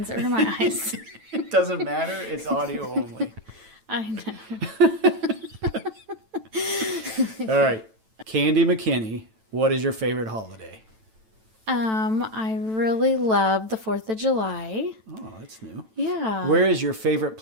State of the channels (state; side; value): late; left; 9.1 ms